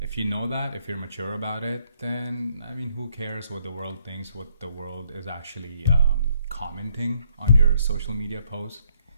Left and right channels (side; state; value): both; inverted; correlation -0.70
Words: you know that, if you're mature about it, then, I mean, who cares what the world thinks, what the world is actually commenting on your social media posts?